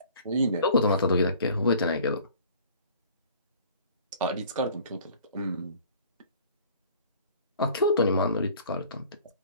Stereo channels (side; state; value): both; inverted; correlation -0.50